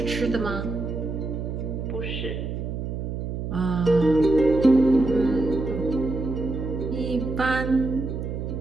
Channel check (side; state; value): right; noise; hum, 5 dB below the sound